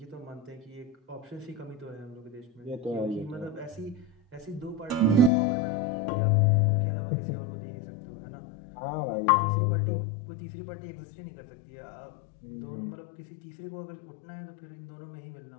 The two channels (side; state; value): right; drops out; at 5.3 s